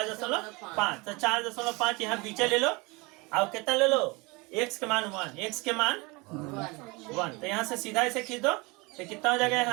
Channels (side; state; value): left; quieter; 26.3 dB